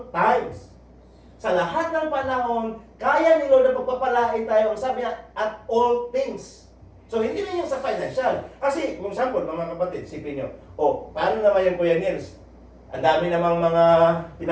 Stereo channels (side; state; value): both; identical; correlation 1.00